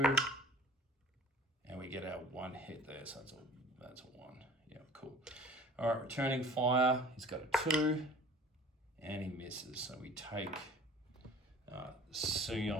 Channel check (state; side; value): normal; both; correlation 0.46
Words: and we get our 1 hit there, so that's a 1. Yeah, cool. All right, returning fire, he's got a 2, and he misses. So we take